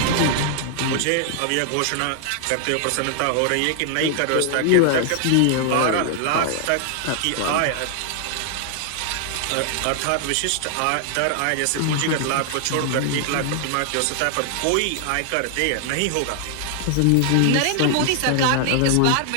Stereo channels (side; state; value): both; different; correlation 0.00